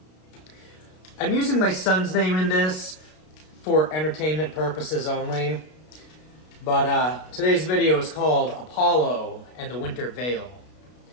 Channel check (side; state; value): right; late; 32 ms